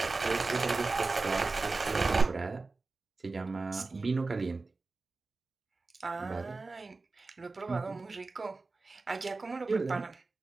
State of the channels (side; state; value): left; quieter; 3.7 dB